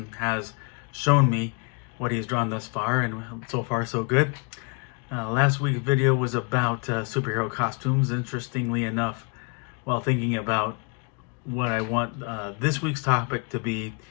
has shown me what he's drawn thus far, and so far so good. Last week's video was about superhero costumes. Interestingly enough, while thinking about what I want this week's topic to be,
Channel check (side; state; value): right; quieter; 34.7 dB